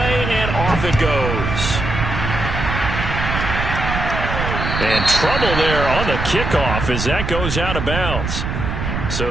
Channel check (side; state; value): right; noise; rumble, 3 dB below the sound